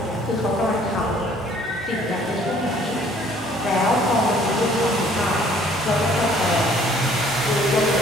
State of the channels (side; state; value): both; normal; correlation 0.58